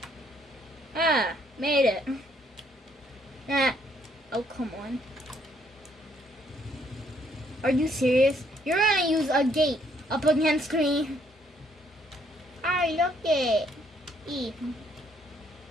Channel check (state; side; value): normal; both; correlation 0.68